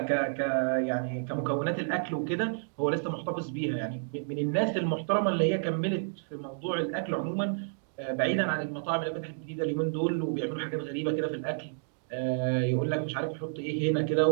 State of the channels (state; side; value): silent; left; digital silence